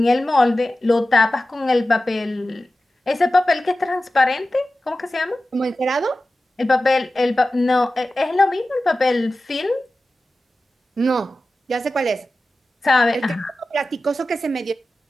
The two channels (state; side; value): normal; both; correlation 0.94